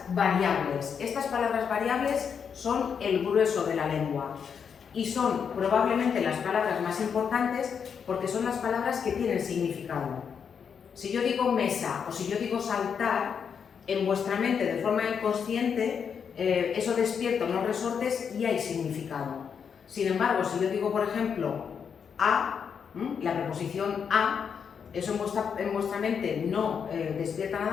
variables. Estas palabras variables son el grueso de la lengua y son probablemente las palabras más importantes porque son las palabras que tienen significado. Si yo digo mesa o si yo digo saltar, en vuestra mente de forma inconsciente eso despierta unos resortes y hay significado. Sin embargo, si yo digo por ejemplo a, la preposición a, eso en vuestra mente no despierta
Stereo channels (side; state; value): right; quieter; 6.9 dB